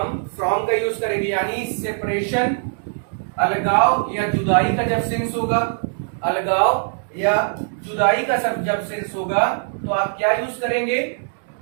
फ्रॉम का यूज करेंगे। यानी सेपरेशन, अलगाव या जुदाई का जब सेंस होगा, अलगाव या जुदाई का सब जब सेंस होगा, तो आप क्या यूज करेंगे,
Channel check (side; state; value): left; silent; digital silence